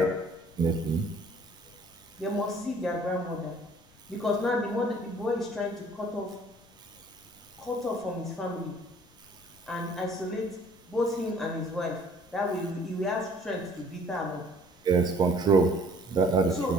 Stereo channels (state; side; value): noise; left; rumble, 28 dB below the sound